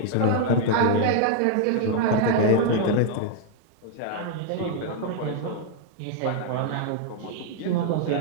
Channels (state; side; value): different; both; correlation 0.00